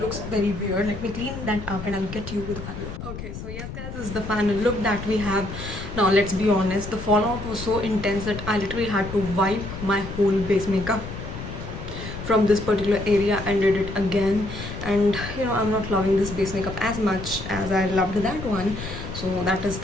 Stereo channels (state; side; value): noise; left; rumble, 9 dB below the sound